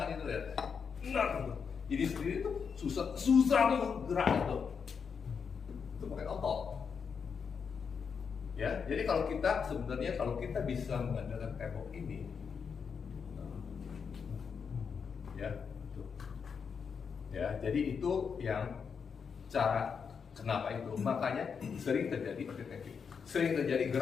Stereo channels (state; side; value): quieter; right; 6.3 dB